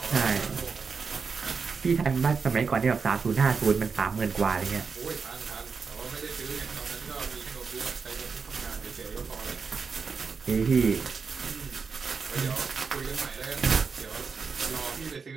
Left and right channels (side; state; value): left; quieter; 5.3 dB